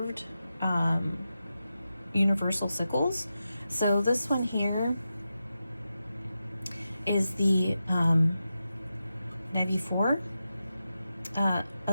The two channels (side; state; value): both; inverted; correlation -0.90